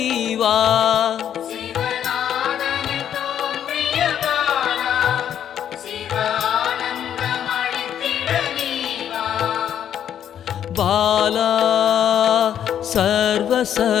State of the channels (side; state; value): right; quieter; 9.7 dB